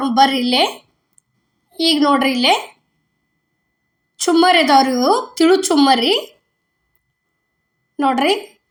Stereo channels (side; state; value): both; identical; correlation 1.00